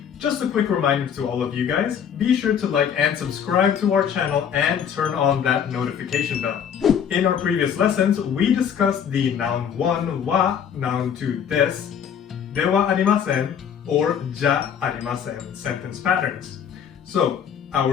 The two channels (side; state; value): right; quieter; 8.1 dB